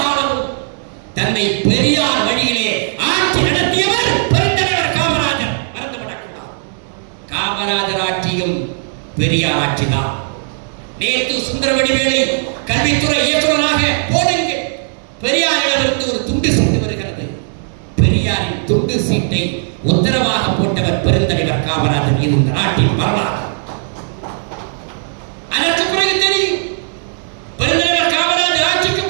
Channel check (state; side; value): silent; left; digital silence